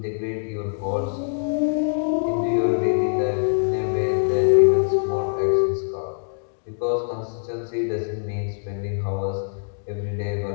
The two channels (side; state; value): right; silent; digital silence